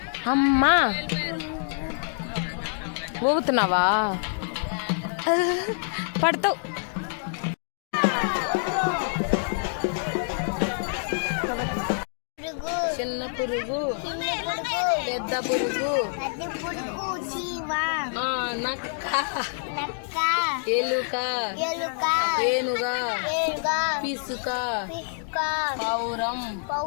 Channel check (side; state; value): right; silent; digital silence